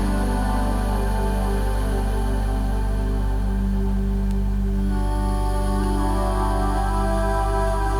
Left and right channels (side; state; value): both; identical; correlation 1.00